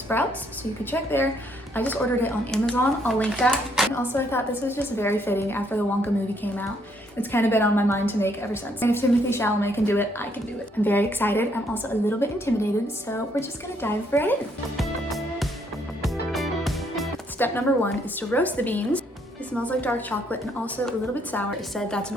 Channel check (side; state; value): both; normal; correlation 0.70